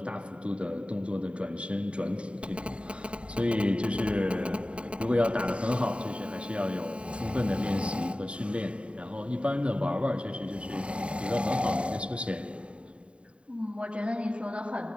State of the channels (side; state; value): left; late; 0.059 ms